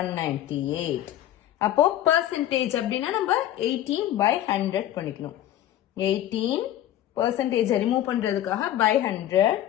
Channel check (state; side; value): quieter; right; 12.6 dB